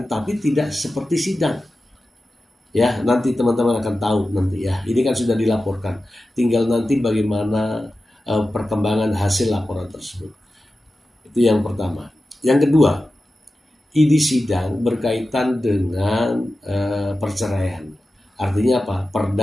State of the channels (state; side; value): normal; both; correlation 0.93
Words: tapi tidak seperti sidang. Ya, nanti teman-teman akan tahu nanti ya. Ini kan sudah dilaporkan. Tinggal nanti bagaimana perkembangan hasil laporan tersebut. Itu yang pertama. Yang kedua, ini sidang berkaitan dengan perceraian. Artinya apa?